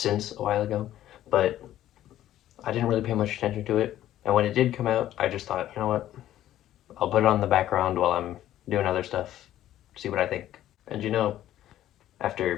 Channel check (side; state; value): right; quieter; 12.9 dB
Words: a while ago, but I didn't really pay much attention to it. And when it did come out, I just thought, you know what, I'll put it on the background while I'm doing other stuff, see what I think. And